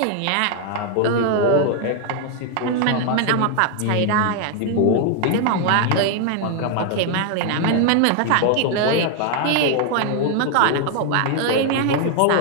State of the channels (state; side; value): different; both; correlation 0.00